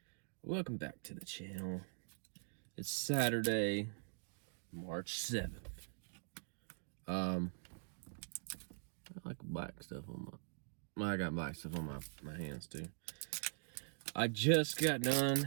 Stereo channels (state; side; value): silent; left; digital silence